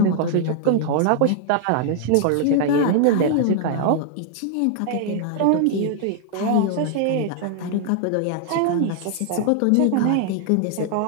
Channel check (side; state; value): both; different; correlation 0.00